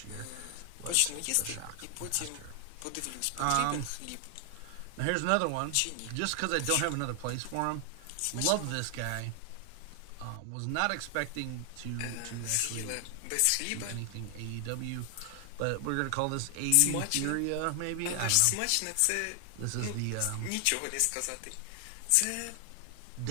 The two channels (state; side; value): different; both; correlation 0.00